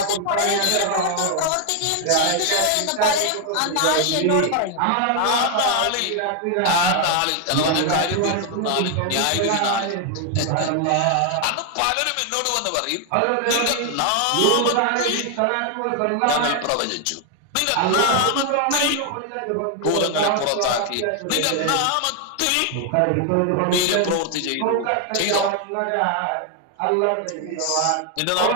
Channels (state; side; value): different; both; correlation 0.00